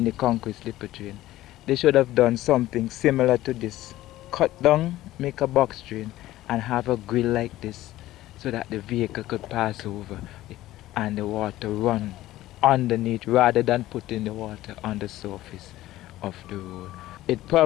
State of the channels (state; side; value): quieter; right; 15.5 dB